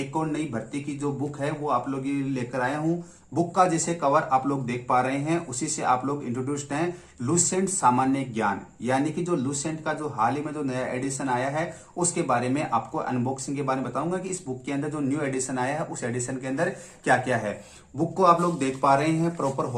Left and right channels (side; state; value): both; identical; correlation 1.00